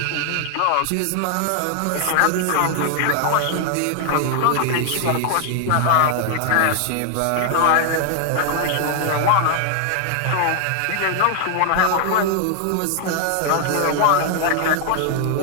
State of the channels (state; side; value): different; both; correlation 0.00